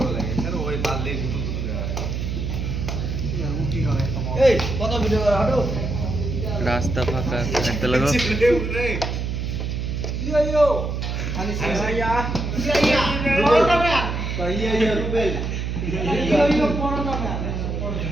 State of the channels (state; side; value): noise; right; hum, 2 dB below the sound